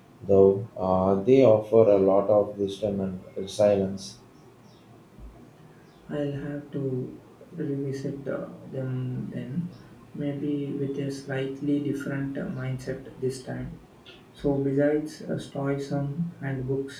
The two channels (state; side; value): identical; both; correlation 1.00